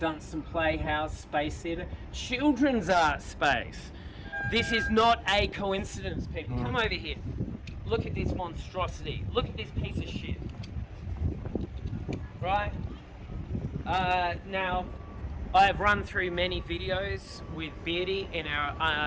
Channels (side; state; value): both; identical; correlation 1.00